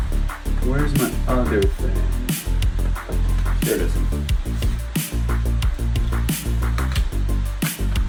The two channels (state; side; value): identical; both; correlation 1.00